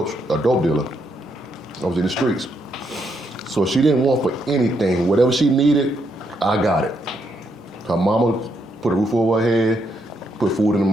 dealer. I was in the streets. So she didn't want for anything. Whatever she needed, I got it. Her mama put a roof over her head, put food in the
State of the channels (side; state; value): both; normal; correlation 0.77